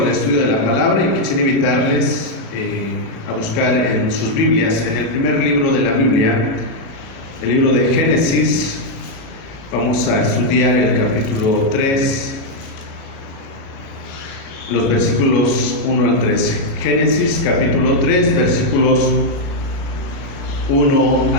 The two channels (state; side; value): late; right; 37 ms